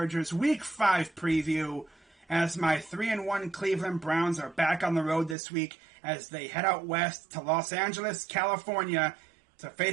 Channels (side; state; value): left; drops out; at 5.4 s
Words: Week 5 preview as my 3-1 Cleveland Browns are back on the road this week as they head out west to Los Angeles, California to